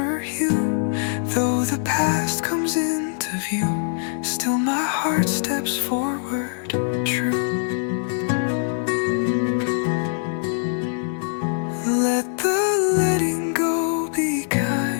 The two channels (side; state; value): right; silent; digital silence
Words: hue. Though the past comes into view, still my heart steps forward true. Let the letting go be